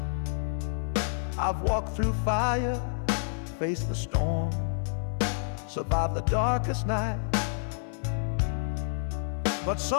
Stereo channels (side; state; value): right; silent; 59 dB below the other